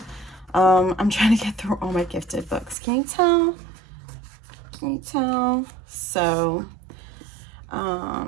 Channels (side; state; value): left; drops out; at 2.8 s